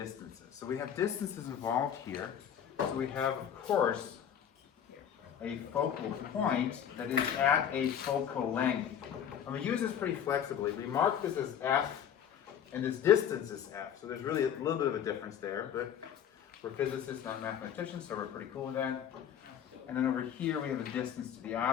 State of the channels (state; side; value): quieter; right; 9.0 dB